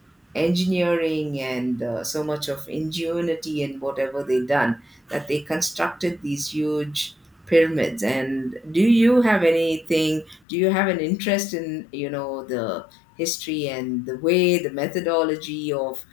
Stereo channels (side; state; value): right; drops out; at 10.4 s